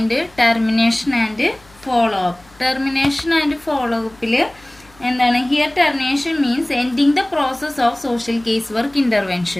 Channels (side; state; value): left; noise; hum, 28 dB below the sound